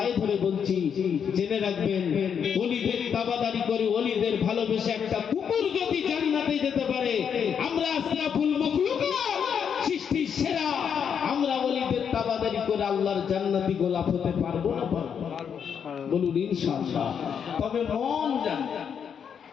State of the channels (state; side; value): quieter; right; 7.5 dB